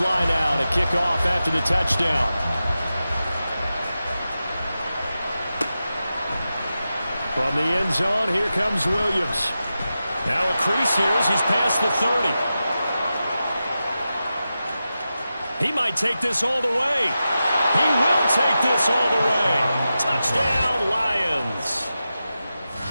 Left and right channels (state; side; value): inverted; both; correlation -0.92